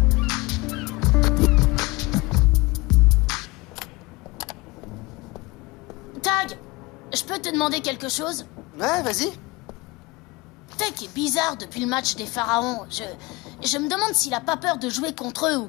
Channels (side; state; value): right; quieter; 23.4 dB